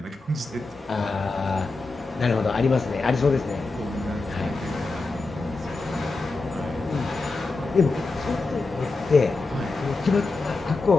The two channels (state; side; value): quieter; right; 3.6 dB